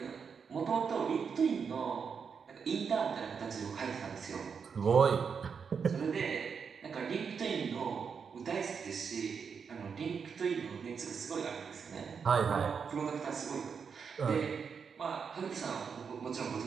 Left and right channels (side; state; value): left; quieter; 6.2 dB